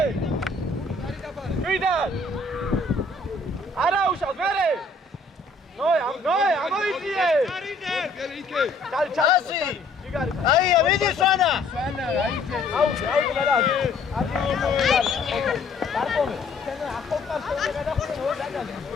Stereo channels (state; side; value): quieter; right; 3.4 dB